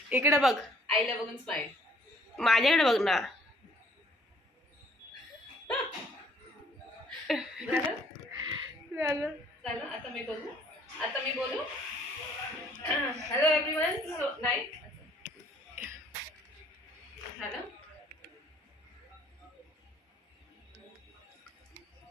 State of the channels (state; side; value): normal; both; correlation 0.60